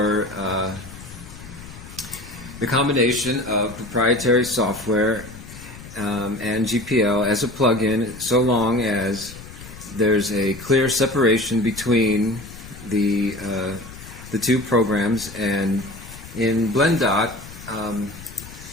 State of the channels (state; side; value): noise; left; rumble, 16 dB below the sound